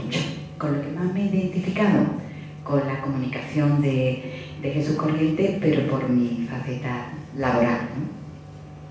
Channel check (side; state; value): both; identical; correlation 1.00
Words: Con lo que más me he identificado, con la comunicación de Jesús Corriente, pero por mi faceta laboral,